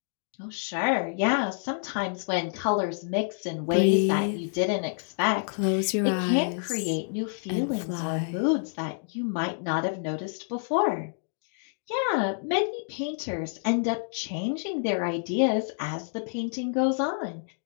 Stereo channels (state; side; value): silent; right; digital silence